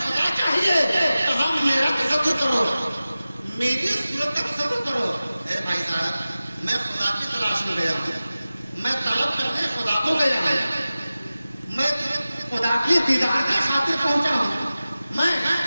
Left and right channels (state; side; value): inverted; both; correlation -0.96